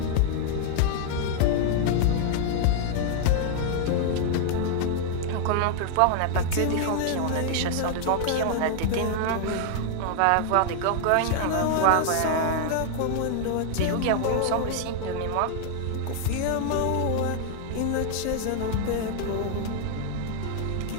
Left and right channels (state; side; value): different; both; correlation -0.01